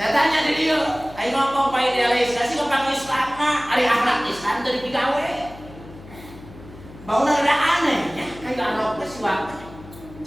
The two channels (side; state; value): left; noise; hum, 18 dB below the sound